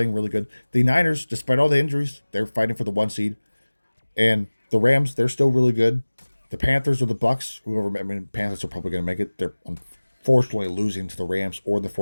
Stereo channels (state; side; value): inverted; both; correlation -1.00